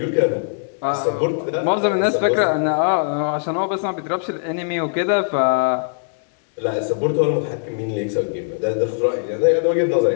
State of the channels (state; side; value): silent; right; digital silence